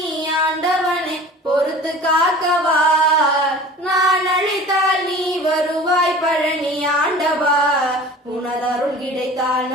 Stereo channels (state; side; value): normal; both; correlation 0.41